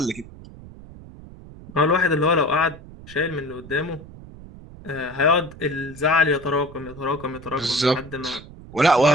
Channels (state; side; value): noise; right; rumble, 17 dB below the sound